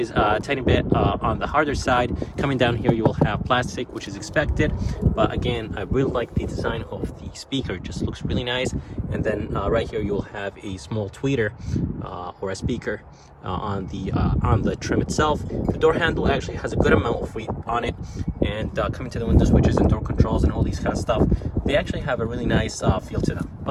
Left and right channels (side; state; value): both; identical; correlation 1.00